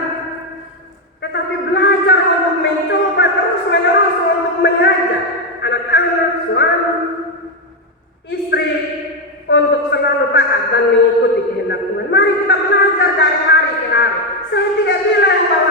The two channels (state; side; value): normal; both; correlation 0.06